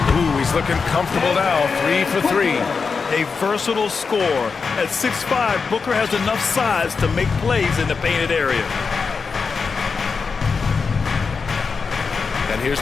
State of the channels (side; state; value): right; quieter; 5.1 dB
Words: Ooh, he's looking comfortable now. 3 for 3. A versatile scorer. At 6'5", Booker has enough size to make plays in the painted area. And here's